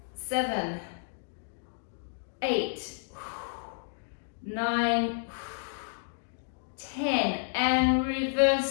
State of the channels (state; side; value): silent; right; digital silence